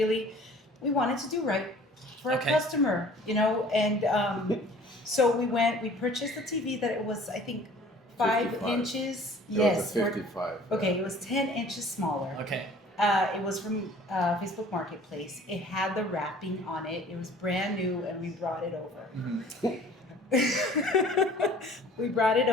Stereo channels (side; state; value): both; normal; correlation 0.50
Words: wanted to do right for our customer, and so we purchased a TV that it was, I think, 5 55. inches. It was a 55. Okay, it was 10 inches smaller. Okay. It was from Facebook Marketplace. It had the wrapping on it. It was brand new, and we brought it over. We brought it